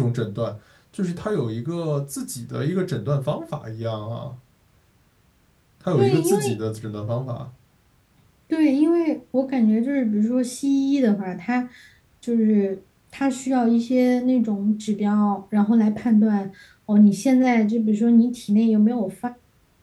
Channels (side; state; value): both; identical; correlation 1.00